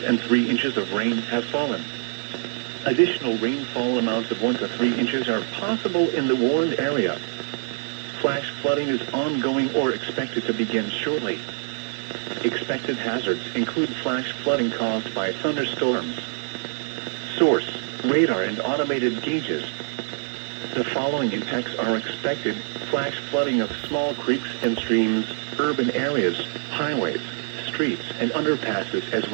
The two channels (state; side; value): silent; left; digital silence